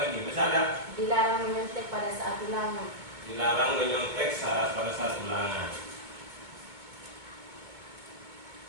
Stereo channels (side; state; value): left; late; 2.2 ms